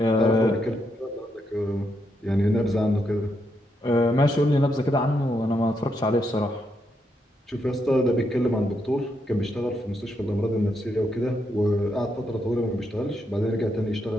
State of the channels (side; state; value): both; normal; correlation 0.80